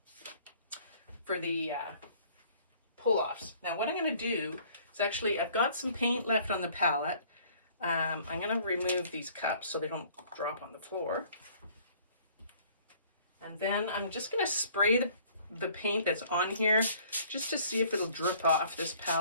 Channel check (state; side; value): inverted; both; correlation -0.56